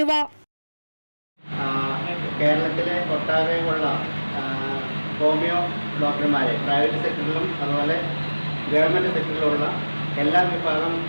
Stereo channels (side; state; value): both; inverted; correlation -1.00